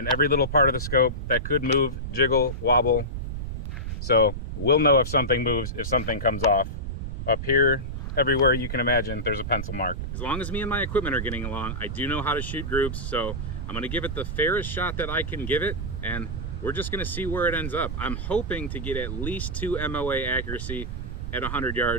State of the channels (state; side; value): noise; right; rumble, 5 dB below the sound